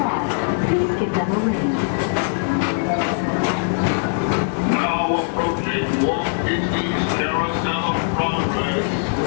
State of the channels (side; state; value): right; silent; digital silence